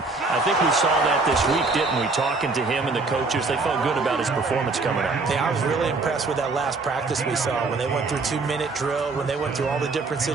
I think we saw that this week, didn't we? Talking to him and the coaches, they felt good about his performance coming up. Yeah, I was really impressed with that last practice we saw when they went through 2-minute drill, when they went through all the different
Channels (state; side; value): quieter; left; 3.8 dB